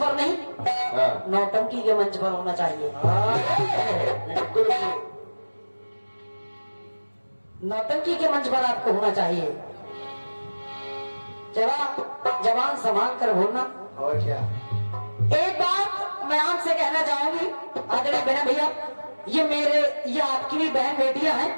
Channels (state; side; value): inverted; both; correlation -1.00